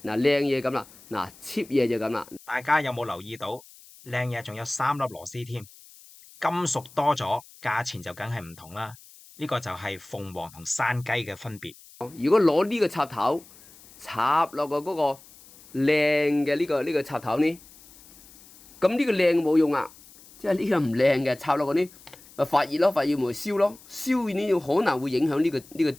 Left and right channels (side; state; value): left; noise; hiss, 23 dB below the sound